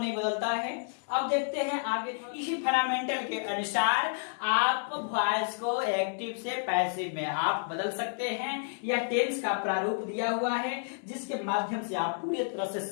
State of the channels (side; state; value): right; silent; 58 dB below the other